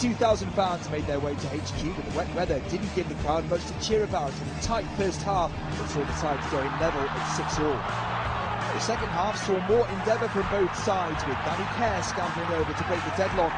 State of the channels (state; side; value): identical; both; correlation 1.00